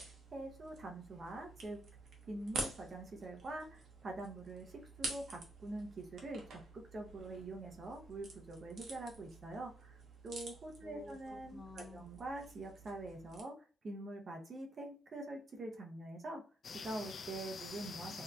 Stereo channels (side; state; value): both; normal; correlation 0.77